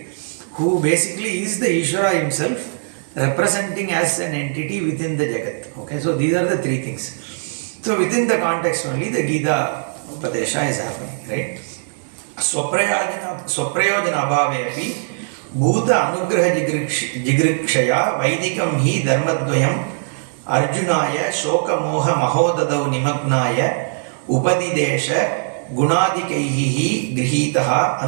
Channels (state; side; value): silent; left; digital silence